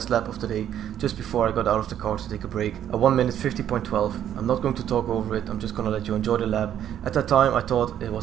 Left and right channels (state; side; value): quieter; left; 10.4 dB